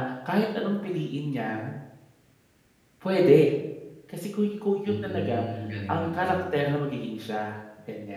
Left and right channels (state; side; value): identical; both; correlation 1.00